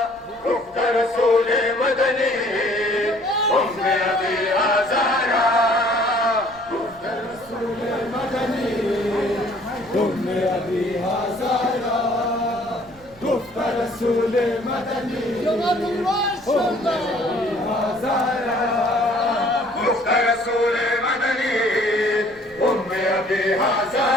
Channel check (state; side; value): noise; right; rumble, 26 dB below the sound